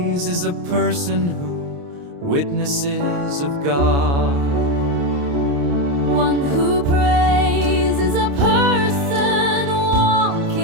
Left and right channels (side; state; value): left; late; 29 ms